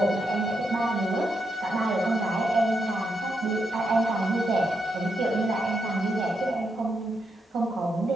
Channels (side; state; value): both; normal; correlation 0.82